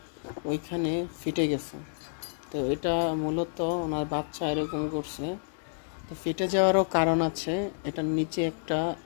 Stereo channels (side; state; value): right; silent; digital silence